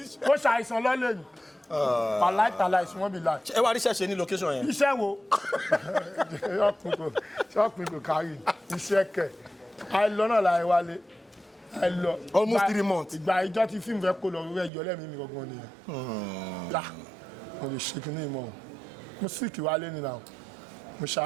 kó ṣàìsàn lọ́lẹ̀ yìí pàláìtàlà ìsúnwọ́n bí láì. ẹ wá ríṣẹ́ ṣe ní location yẹn. iṣẹ́ wo ṣọ́ọ̀pù kò kárí iṣẹ́ kẹ̀ àìlọ́nà láì wálé àìlọ. almost 3 months. ìgbà ìjọ tí fíìmù fẹ́ kó lọ rẹ̀ yọ lẹ́mìí mi gangan nìyẹn. mo lè ṣe kíní ìmọ̀ mo síkì wálé nínú àwọn mo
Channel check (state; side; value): drops out; left; at 14.7 s